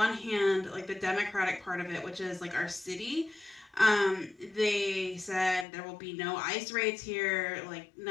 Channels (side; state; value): right; drops out; at 5.7 s